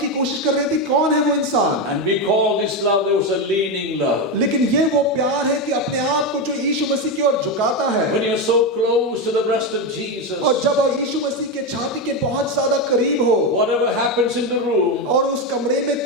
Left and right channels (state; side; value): normal; both; correlation 0.11